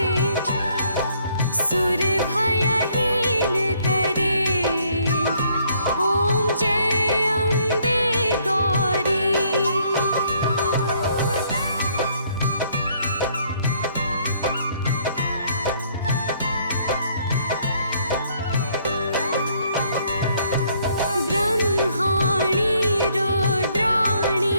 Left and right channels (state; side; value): inverted; both; correlation -0.66